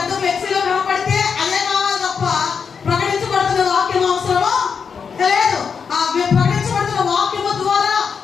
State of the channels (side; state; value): right; quieter; 6.2 dB